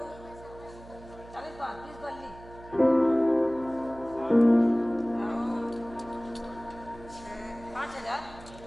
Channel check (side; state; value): right; noise; hum, 19 dB below the sound